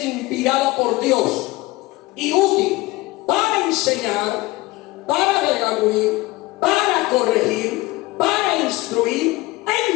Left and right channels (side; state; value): right; quieter; 20.2 dB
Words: inspirada por Dios y útil para enseñar, para redarguir, para corregir, para instruir